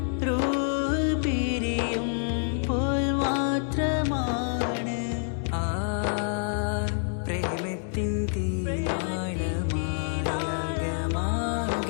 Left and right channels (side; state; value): right; silent; digital silence